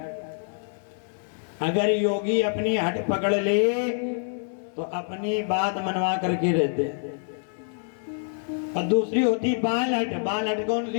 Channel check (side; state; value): right; silent; 61 dB below the other